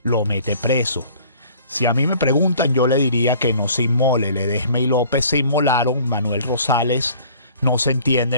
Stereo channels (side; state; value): both; inverted; correlation -0.52